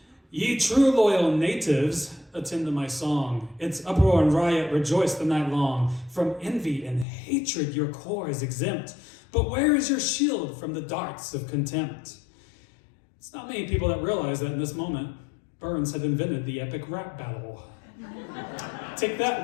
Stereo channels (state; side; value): drops out; right; at 7.1 s